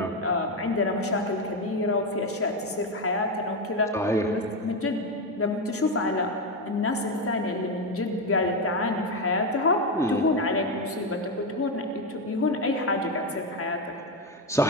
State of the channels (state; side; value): normal; both; correlation 0.10